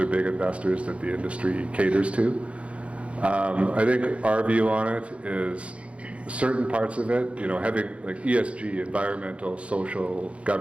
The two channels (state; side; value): late; left; 0.062 ms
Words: big investors that the industry caters to. I think our view on it is certain parts of it, having like ESG, environmental, social,